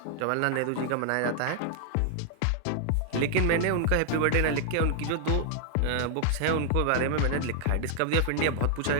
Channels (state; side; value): different; both; correlation 0.00